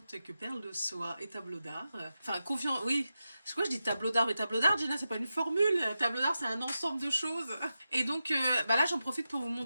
que perles de soie et tableau d'art. Enfin, confiant, oui. C'est quoi, je dis tableau d'art, mais tableau d'art, Gina, c'est pas une formule. Tableau d'art, c'est un ensemble de choses. Et donc, là, j'en profite pour vous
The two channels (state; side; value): inverted; both; correlation -0.91